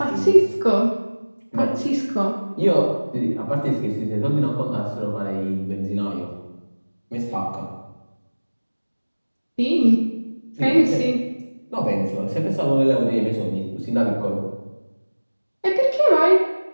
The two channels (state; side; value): inverted; both; correlation -1.00